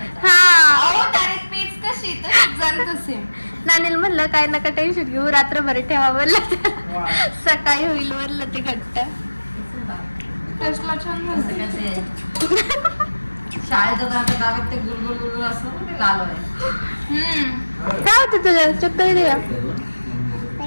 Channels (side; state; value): both; inverted; correlation -1.00